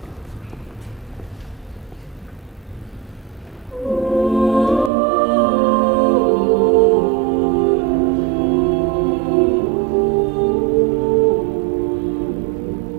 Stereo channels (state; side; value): drops out; left; at 4.9 s